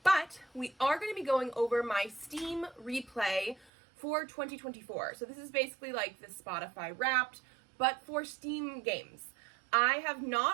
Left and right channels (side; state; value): left; drops out; at 3.7 s